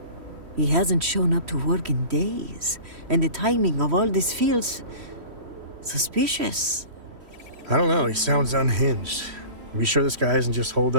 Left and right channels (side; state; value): left; late; 3.1 ms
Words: He hasn't shown up to work in days, and the timing of all this feels suspicious. I don't know, he sounds unhinged. Are we sure this guy isn't just holed